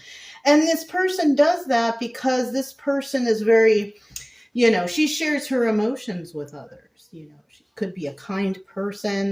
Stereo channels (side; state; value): both; identical; correlation 1.00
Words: And this person does that because this person is very, you know, she shares her emotions with others. You know, she could be a kind